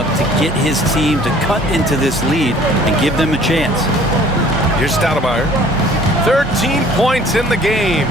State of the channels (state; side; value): normal; both; correlation 0.53